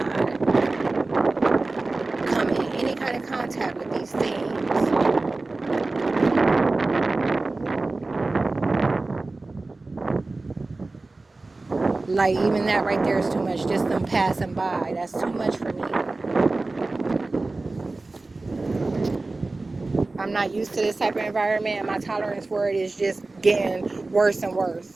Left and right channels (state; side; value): quieter; left; 3.3 dB